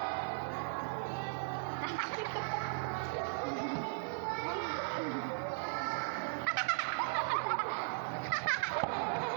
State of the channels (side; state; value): left; silent; digital silence